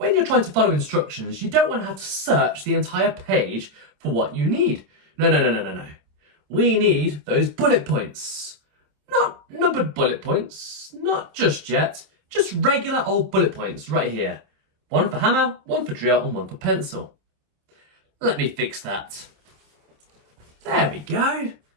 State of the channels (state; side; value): late; left; 27 ms